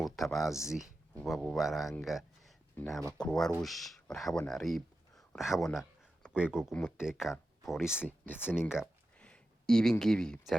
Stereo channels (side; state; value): both; normal; correlation 0.91